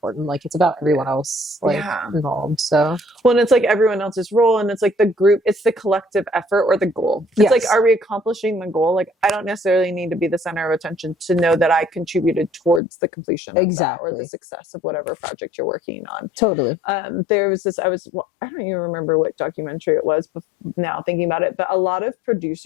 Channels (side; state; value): right; drops out; at 12.8 s